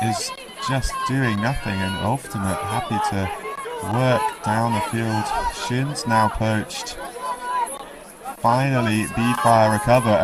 is just doing nothing, and Ouftimate happy to work down the field. Shin's now poached. Finally BeeFire recover,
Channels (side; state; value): both; identical; correlation 1.00